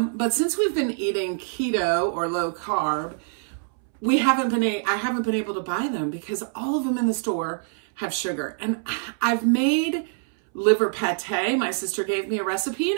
But since we've been eating keto or low carb, I haven't been able to buy them because all of them in the store have sugar. And I've made liver pate. My sister gave me a recipe, and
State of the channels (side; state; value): left; silent; 62 dB below the other